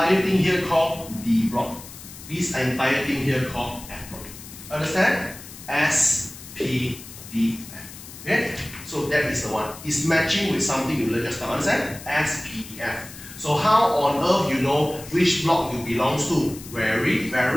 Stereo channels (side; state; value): left; noise; hiss, 15 dB below the sound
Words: thing here called D block. This entire thing here called F block. Understand? S, P, D, F. Okay? So that is the one. It's matching with something you learned just now. Understand? S, P, D, F. So how on earth you know which block you belong to? Very,